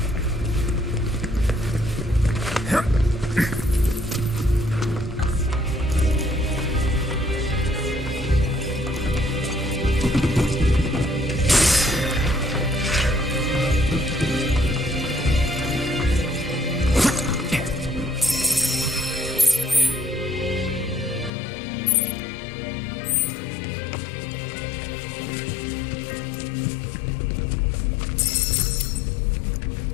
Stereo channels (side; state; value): right; drops out; at 21.3 s